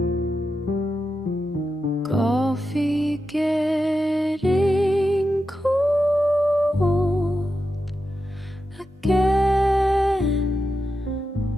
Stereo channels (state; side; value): normal; both; correlation 0.89